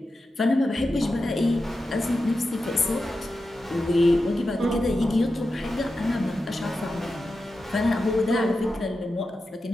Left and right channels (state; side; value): normal; both; correlation 0.91